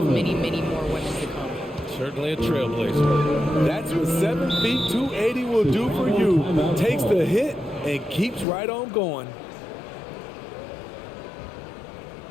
many, many more women to come. Certainly a trailblazer. That's what 7 feet 280 will do for you. Takes the hit and keeps right on going.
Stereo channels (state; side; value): drops out; right; at 8.5 s